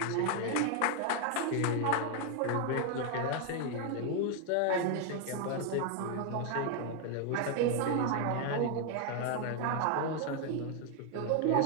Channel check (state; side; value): different; both; correlation 0.00